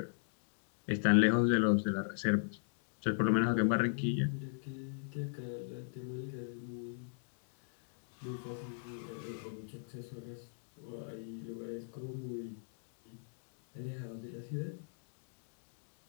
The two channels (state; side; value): silent; right; digital silence